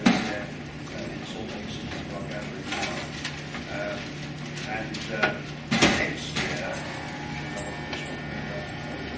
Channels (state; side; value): identical; both; correlation 1.00